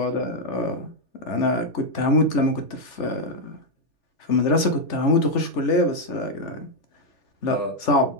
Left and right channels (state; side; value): late; right; 3.4 ms